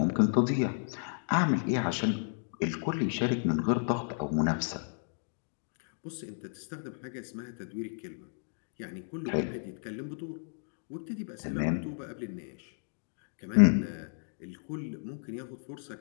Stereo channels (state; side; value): silent; right; digital silence